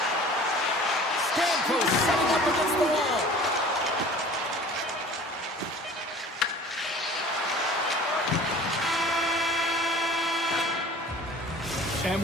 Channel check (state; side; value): normal; both; correlation 0.45